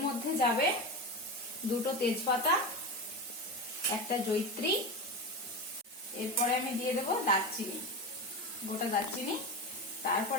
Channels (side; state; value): both; normal; correlation 0.22